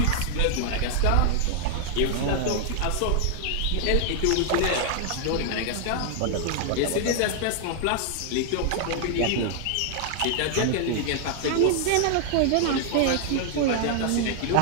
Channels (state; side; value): different; both; correlation -0.01